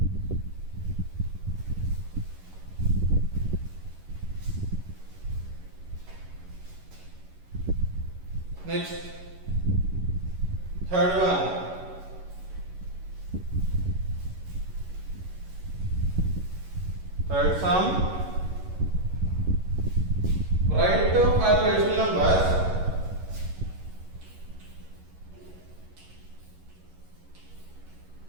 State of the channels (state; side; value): late; left; 11 ms